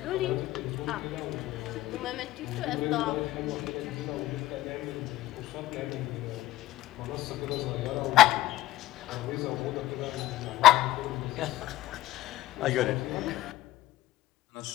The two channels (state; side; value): quieter; right; 15.7 dB